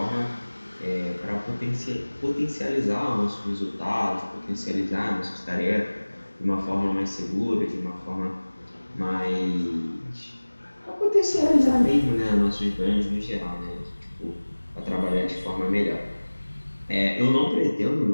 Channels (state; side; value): inverted; both; correlation -1.00